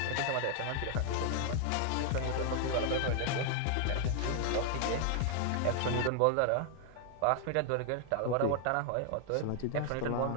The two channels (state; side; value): different; both; correlation 0.00